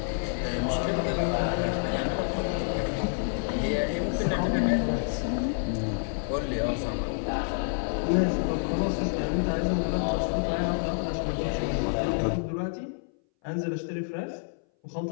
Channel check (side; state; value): right; silent; 59 dB below the other